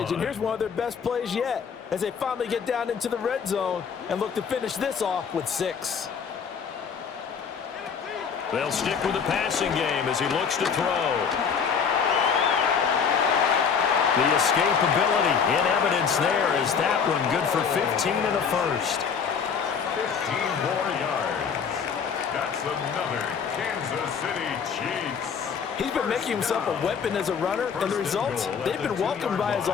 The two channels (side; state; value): right; quieter; 6.5 dB